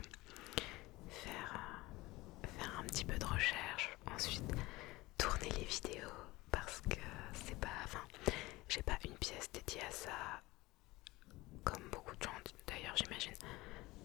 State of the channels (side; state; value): right; quieter; 20.3 dB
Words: Faire un petit peu de recherche, ensuite tourner les vidéos parce que j'ai pas une pièce dédiée à ça comme beaucoup de gens d'ailleurs j'imagine.